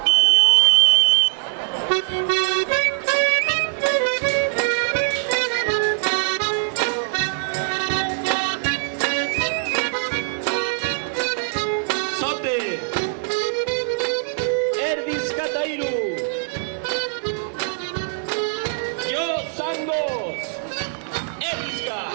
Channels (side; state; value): left; silent; digital silence